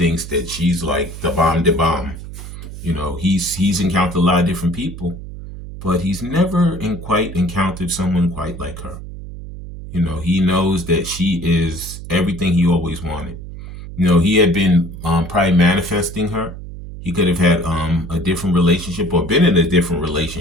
that she's like the bomb de bomb. You know, he's encountered a lot of different people, but he's never quite encountered someone quite like her. You know, he knows that she is everything he always wanted. You know, he had been probably manifesting her. He could have had a different relationship or been in a different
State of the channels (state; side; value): noise; right; hum, 11 dB below the sound